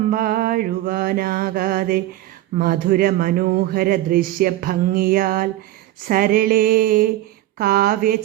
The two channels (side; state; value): left; quieter; 14.9 dB